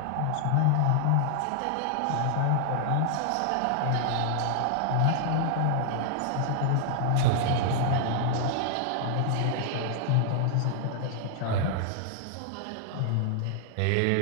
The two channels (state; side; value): different; both; correlation 0.00